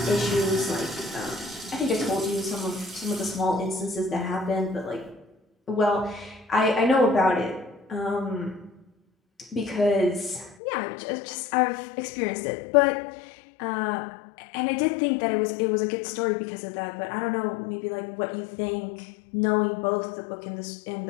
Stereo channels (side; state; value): right; drops out; at 10.6 s